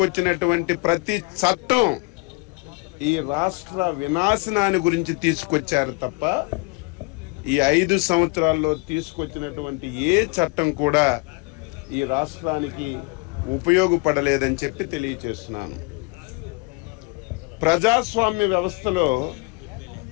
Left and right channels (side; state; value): right; quieter; 27.5 dB